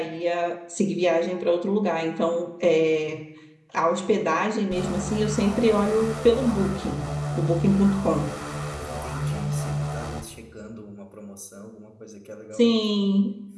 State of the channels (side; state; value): both; identical; correlation 1.00